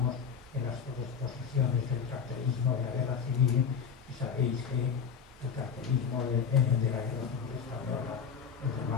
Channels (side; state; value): right; quieter; 6.7 dB